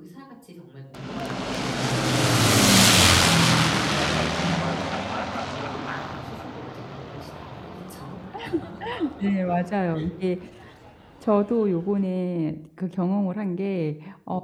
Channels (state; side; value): identical; both; correlation 1.00